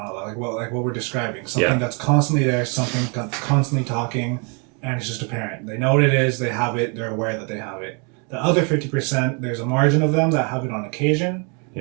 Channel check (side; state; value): left; quieter; 35.2 dB